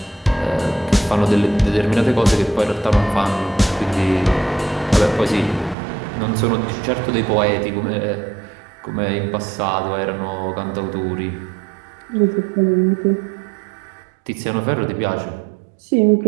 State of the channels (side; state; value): left; drops out; at 5.8 s